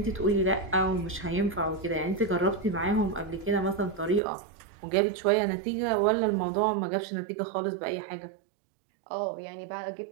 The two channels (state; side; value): drops out; left; at 4.2 s